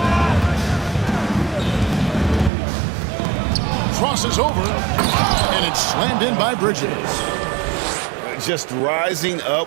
Crosses over, and it's slammed in by Bridges. Just rising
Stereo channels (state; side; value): drops out; left; at 2.5 s